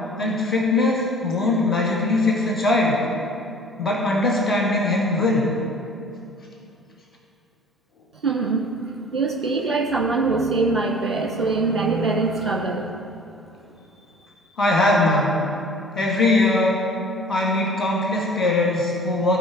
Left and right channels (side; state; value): both; normal; correlation 0.47